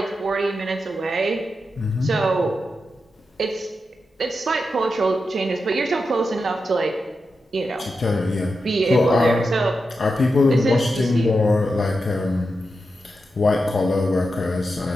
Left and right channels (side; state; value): both; normal; correlation 0.88